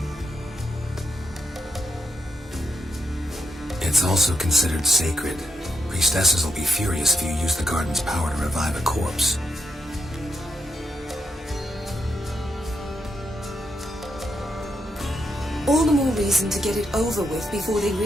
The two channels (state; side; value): normal; both; correlation 0.81